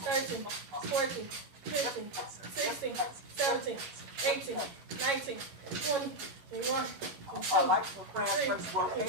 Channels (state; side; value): late; left; 11 ms